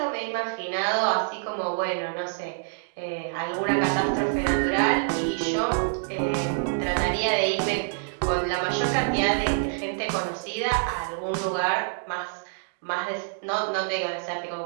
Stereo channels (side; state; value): left; silent; 61 dB below the other